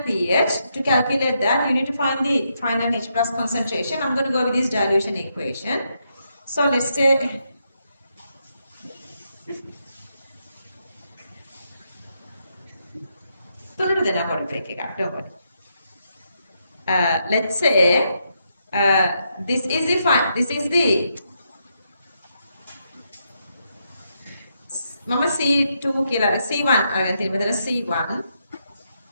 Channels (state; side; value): inverted; both; correlation -0.80